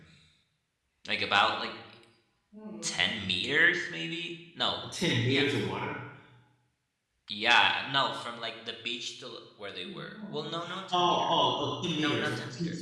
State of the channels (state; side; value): identical; both; correlation 1.00